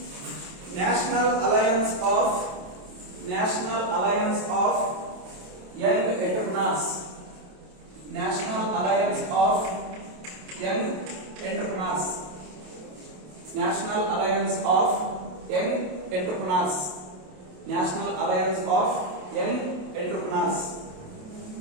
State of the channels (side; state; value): left; late; 27 ms